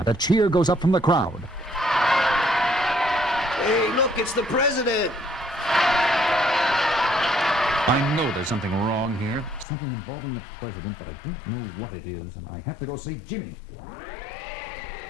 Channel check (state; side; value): drops out; right; at 9.7 s